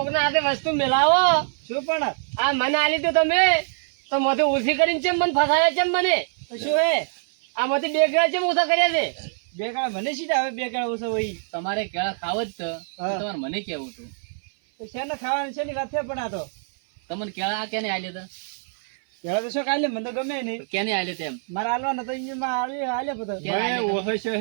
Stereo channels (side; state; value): left; silent; 56 dB below the other